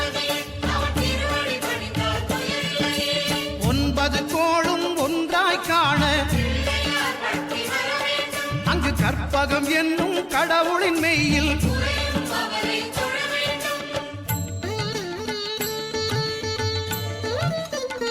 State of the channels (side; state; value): both; identical; correlation 1.00